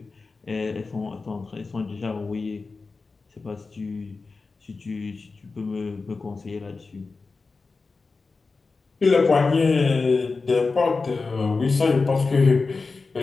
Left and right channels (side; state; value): right; quieter; 4.1 dB